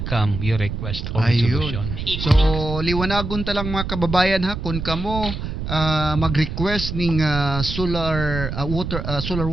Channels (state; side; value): noise; right; rumble, 5 dB below the sound